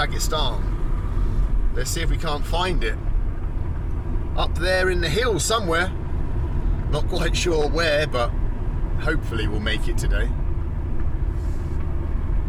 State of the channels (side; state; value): both; identical; correlation 1.00